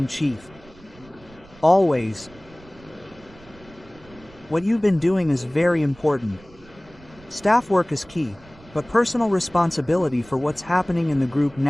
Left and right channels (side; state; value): right; noise; rumble, 24 dB below the sound